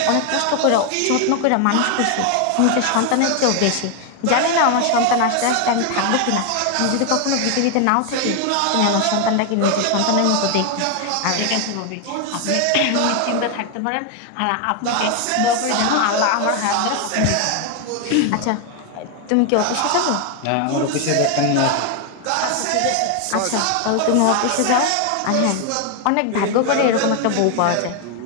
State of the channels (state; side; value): different; both; correlation 0.01